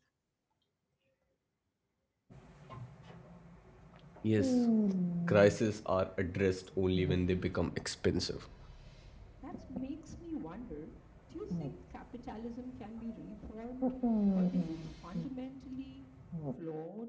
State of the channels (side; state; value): both; identical; correlation 1.00